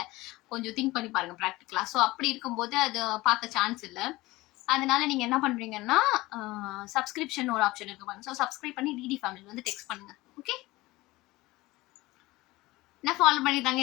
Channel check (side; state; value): right; quieter; 19.8 dB